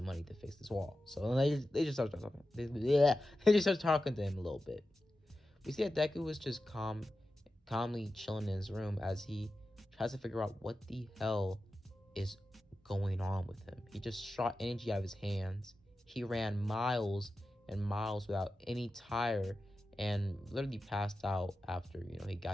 money to fix this wall. So they just start talking. They just start talking to him a little bit. We see that Deku was just calmly chilling in his room as he tries to figure out what the hell is going on with him. He just shot energy out of his hands. He ran miles and miles without any tire and literally passed out after he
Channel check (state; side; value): normal; both; correlation 0.92